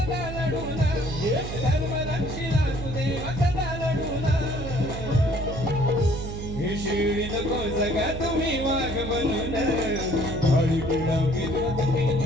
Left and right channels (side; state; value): right; noise; hum, 7 dB below the sound